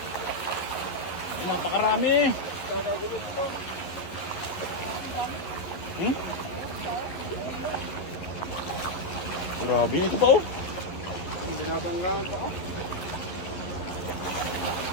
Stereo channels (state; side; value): late; right; 11 ms